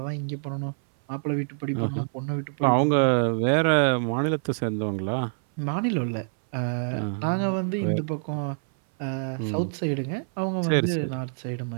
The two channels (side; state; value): left; silent; 58 dB below the other